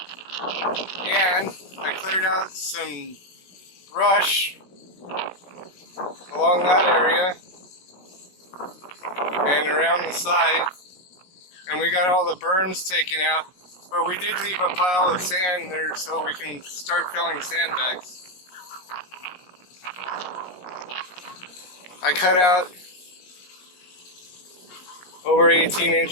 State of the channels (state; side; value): late; right; 17 ms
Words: and I cleared out some brush along that area and around the side, and we got all the berms taken out. But we did leave a pile of sand there so we can start filling sandbags. I cut out over 18